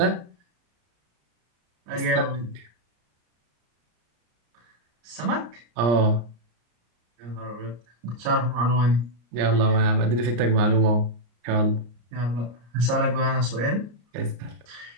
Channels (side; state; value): left; late; 34 ms